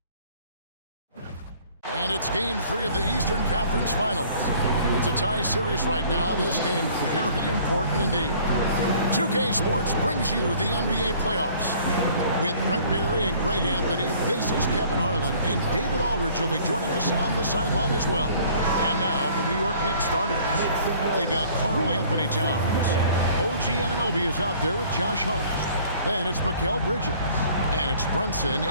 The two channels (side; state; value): both; inverted; correlation -0.54